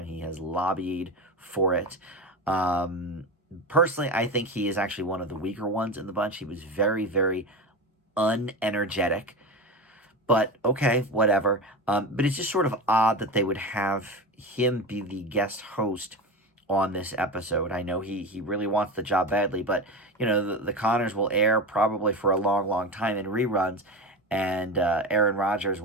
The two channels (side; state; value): both; normal; correlation 0.24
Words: He has lobbied for it. Personally, I think he is actually one of the weaker ones in the bunch. He was very, very unenergetic. But okay, whatever. But it's just sort of odd that they would have him be the guest host on this episode. I know he really wants the job badly, but the Connors will air probably for a long, long time in reruns, and Aaron Rodgers